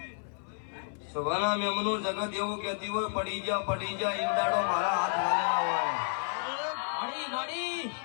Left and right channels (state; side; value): silent; right; 57 dB below the other